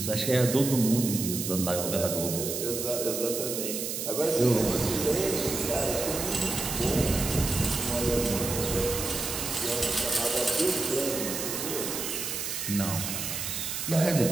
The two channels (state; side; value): noise; right; hiss, 4 dB below the sound